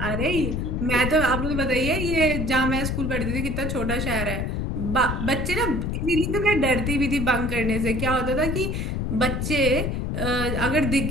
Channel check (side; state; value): left; noise; rumble, 2 dB below the sound